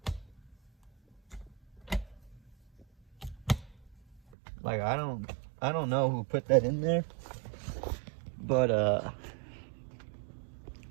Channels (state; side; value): drops out; left; at 4.2 s